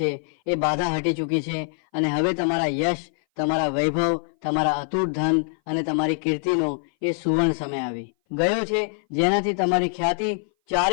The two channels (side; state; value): right; silent; 58 dB below the other